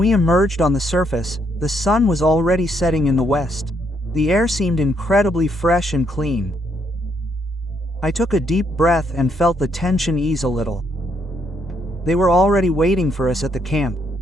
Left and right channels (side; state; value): both; normal; correlation 0.73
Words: emerged on the surface, the sun was already setting in the west. The air seemed incredibly fresh and clean. I took a deep breath and felt the tension ease a little. They were already waiting for us at the camp.